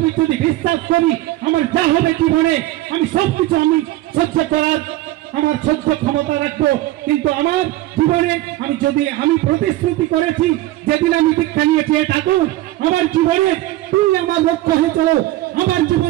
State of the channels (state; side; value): quieter; left; 16.4 dB